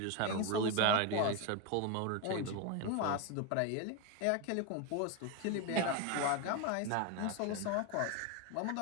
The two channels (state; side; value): different; both; correlation 0.02